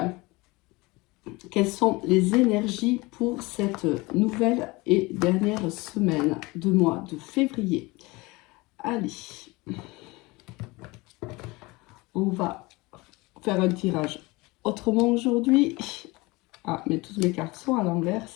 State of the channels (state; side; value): quieter; right; 23.3 dB